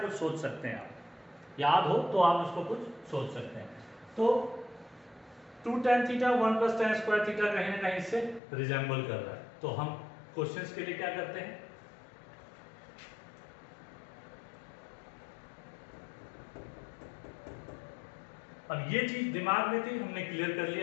कुछ सोच सकते हैं आप, याद हो तो आप उसको कुछ सोच सकते हैं। तो 2 tan theta 1 + tan square theta कहीं ना कहीं इससे रिजेंबल कर रहा है। तो हम क्वेश्चंस के लिए क्या करते हैं, अब ये चीज दिमाग में थी, हमने क्लियर कर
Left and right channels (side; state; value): right; drops out; at 8.4 s